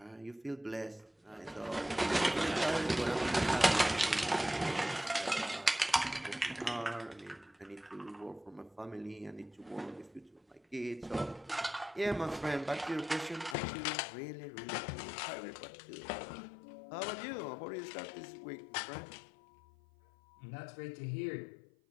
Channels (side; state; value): right; drops out; at 13.6 s